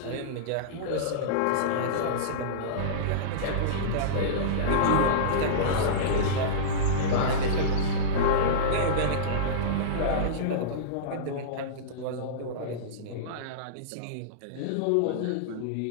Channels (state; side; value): different; both; correlation -0.05